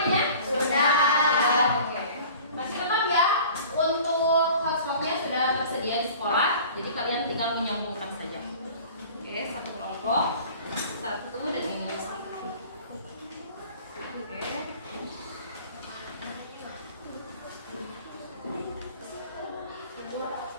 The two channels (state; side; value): inverted; both; correlation -0.45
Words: Sudah. Oke. Masih tetap ya, untuk hotspotnya sudah tersedia di sekolah, jadi kalian tinggal menyambungkan saja. Oke, satu kelompok, satu dan ini satu. Oke.